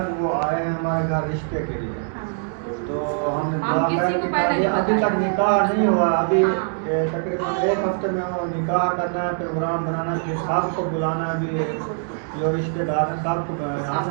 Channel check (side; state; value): left; silent; 64 dB below the other